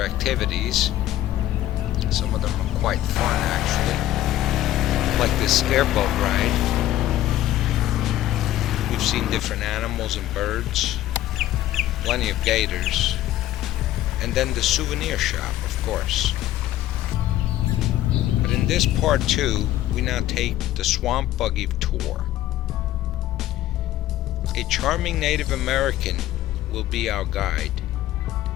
activities. Some of them are quite fun actually, like this airboat ride. We've seen different animals and birds, plenty of gators, and then the souvenir shop, of course. But in this part 2, we now take the Swamp Buggy Tour. A charming Native American will be our guide.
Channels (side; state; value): right; quieter; 13.9 dB